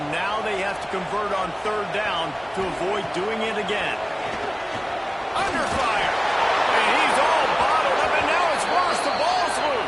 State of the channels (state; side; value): identical; both; correlation 1.00